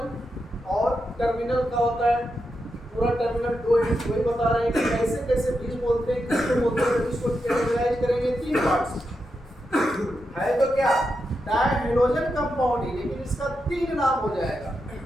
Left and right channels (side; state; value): both; normal; correlation 0.86